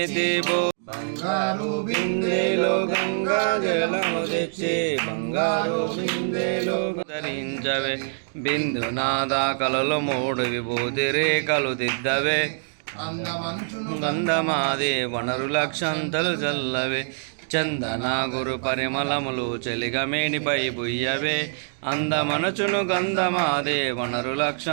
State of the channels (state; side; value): silent; left; digital silence